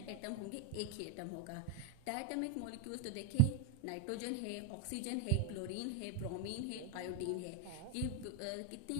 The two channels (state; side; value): different; both; correlation 0.01